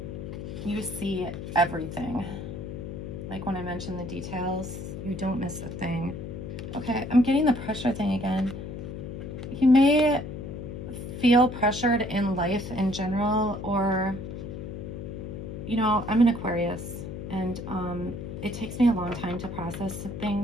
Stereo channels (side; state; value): left; noise; hum, 8 dB below the sound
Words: You see everything. Like when I mentioned the details, you don't miss a thing. Okay, I'm getting the pressure thing again. You may feel pressured in life in general, or, you know, I'm an Aquarius, and it takes me a long time to process